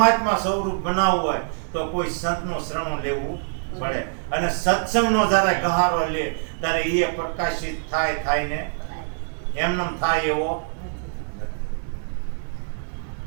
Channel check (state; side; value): silent; left; digital silence